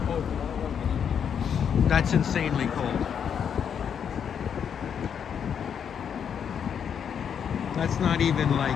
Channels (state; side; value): quieter; right; 7.8 dB